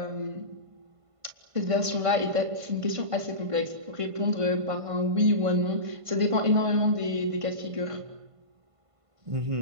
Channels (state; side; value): late; left; 1.5 ms